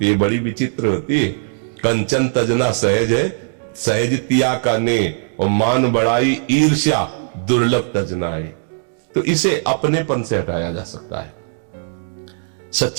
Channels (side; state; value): left; silent; digital silence